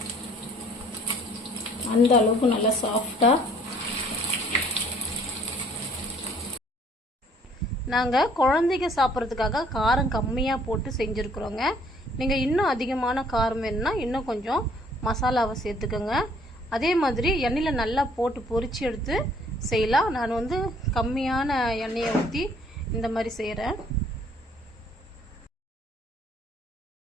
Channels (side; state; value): both; normal; correlation 0.60